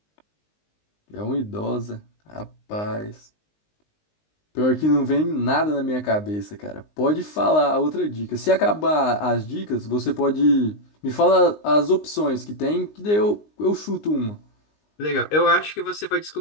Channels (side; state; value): right; late; 19 ms